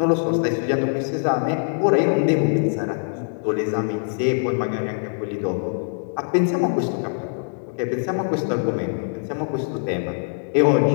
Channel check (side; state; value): right; silent; 64 dB below the other